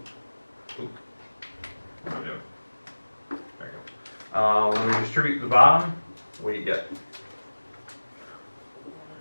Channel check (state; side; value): inverted; both; correlation -1.00